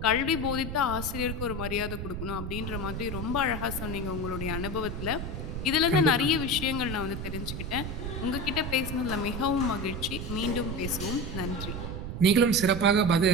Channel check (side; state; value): right; noise; rumble, 5 dB below the sound